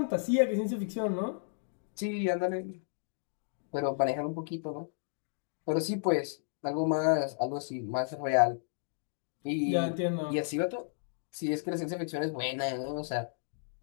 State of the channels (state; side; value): silent; right; digital silence